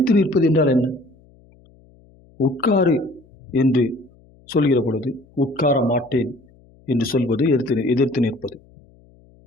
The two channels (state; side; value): noise; left; hum, 29 dB below the sound